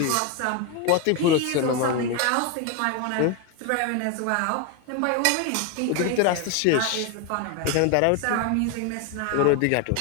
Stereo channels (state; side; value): different; both; correlation 0.02